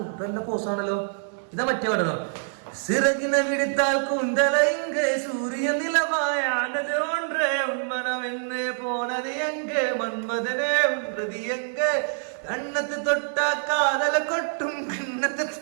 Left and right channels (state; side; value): silent; left; digital silence